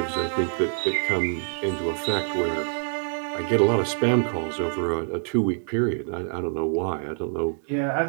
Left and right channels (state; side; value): silent; left; 61 dB below the other